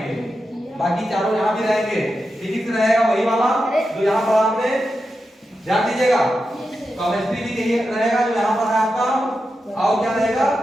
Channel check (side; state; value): both; normal; correlation 0.89